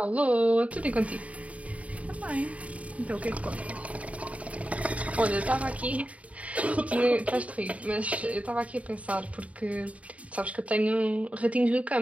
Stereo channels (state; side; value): late; left; 0.067 ms